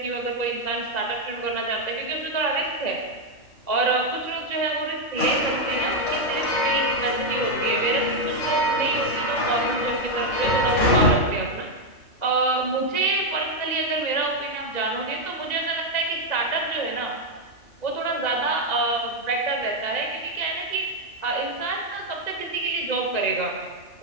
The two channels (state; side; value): late; right; 2.0 ms